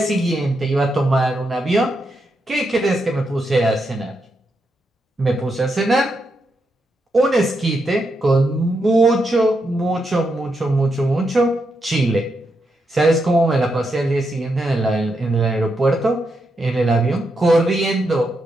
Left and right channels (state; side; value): normal; both; correlation 0.83